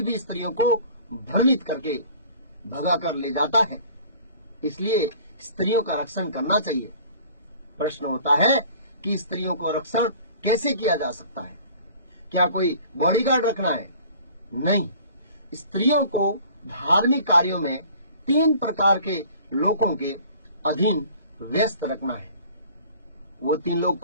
भी स्त्रियों को भ्रमित करके भगा कर ले जाता है। इसलिए स्त्रियों का रक्षण करना चाहिए। प्रश्न होता है कि स्त्रियों को रक्षण कैसे किया जा सकता है? क्या कोई बॉडीगार्ड रखना है? नहीं, स्त्रियों को धार्मिक कार्यों में 3 प्रकार के लोगों के अधीन व्यस्त रखना है। वो 3 लोग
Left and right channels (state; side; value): inverted; both; correlation -0.49